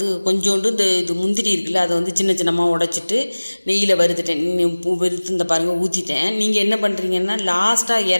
கொஞ்சோண்டு இது முந்திரி இருக்குல்ல, அதை வந்து சின்னமாக உடைச்சிட்டு நெய்யில் வறுத்துட்டேன். வறுத்து இந்த பாருங்கள் ஊற்றிட்டேன். நீங்கள் என்ன பண்ணுறீங்கன்னா லாஸ்ட்டாக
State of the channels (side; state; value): both; inverted; correlation -1.00